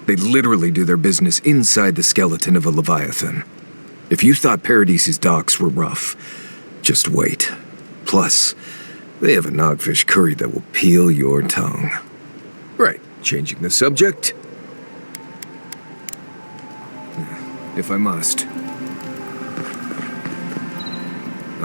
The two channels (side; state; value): both; inverted; correlation -1.00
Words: They literally do their business inside the skeleton of a Leviathan. If you thought Paradise's docks were rough, just wait. Plus, they have a nogfish curry that will peel your tongue. Right, changing the subject. If I must.